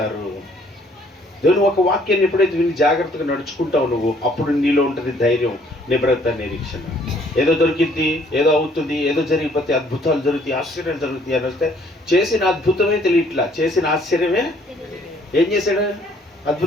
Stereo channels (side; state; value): both; normal; correlation 0.62